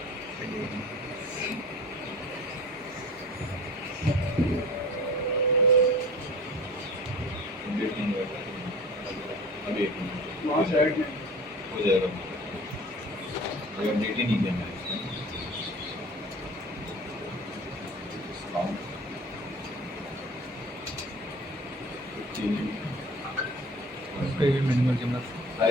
अभी एक मिनट हो जाएगा, अभी अपडेट ही नहीं किया मैंने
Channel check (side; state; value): both; normal; correlation 0.41